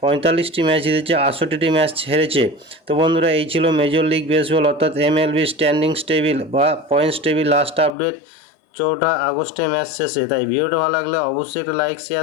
45টি ম্যাচ জিতেছে, 68টি ম্যাচ হেরেছে। তো বন্ধুরা, এই ছিল মেজর লিগ বেসবল অর্থাৎ এমএলবি স্ট্যান্ডিংস টেবিল বা পয়েন্টস টেবিল লাস্ট আপডেট 4 আগস্টের ম্যাচ শেষে। তাই ভিডিওটা ভালো লাগলে অবশ্যই একটা লাইক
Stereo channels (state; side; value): drops out; right; at 7.9 s